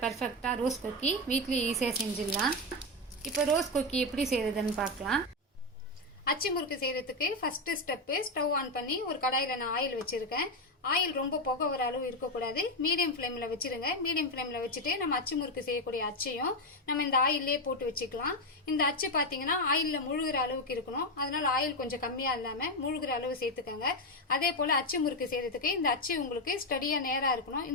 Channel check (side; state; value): both; normal; correlation 0.08